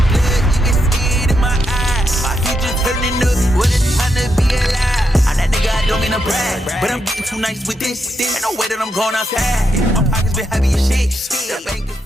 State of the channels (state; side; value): normal; both; correlation 0.82